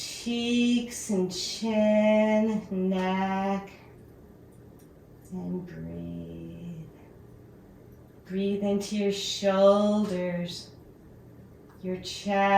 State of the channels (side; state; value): both; identical; correlation 1.00